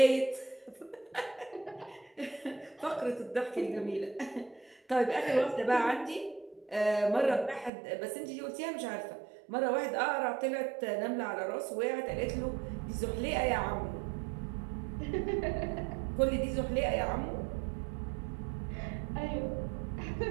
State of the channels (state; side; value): drops out; left; at 7.7 s